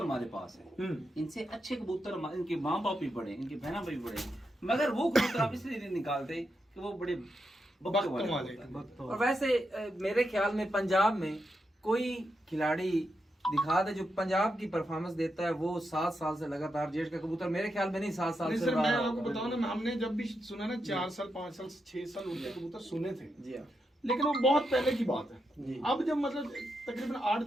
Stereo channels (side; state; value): both; normal; correlation 0.85